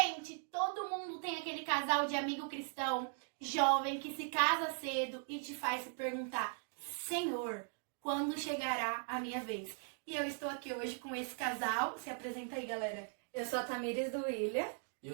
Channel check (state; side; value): silent; left; 52 dB below the other